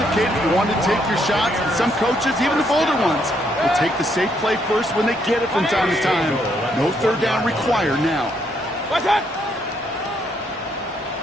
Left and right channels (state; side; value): normal; both; correlation 0.73